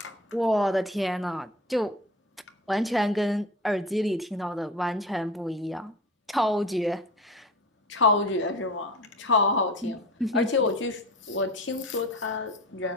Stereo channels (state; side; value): normal; both; correlation 0.35